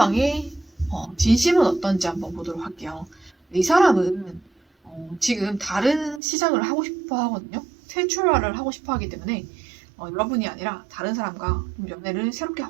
진심은 어떤지 한번 보도록 할게요. 이 사람은 지금 다른 시작을 하고 싶어 하거든요. 새 출발을 하고 싶어 하기 때문에 여러분이 아니라 다른 사람과 좀 연애를 새롭게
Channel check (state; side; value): drops out; left; at 6.2 s